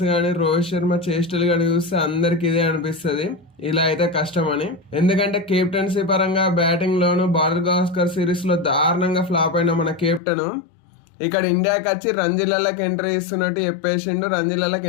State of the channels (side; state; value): right; drops out; at 10.2 s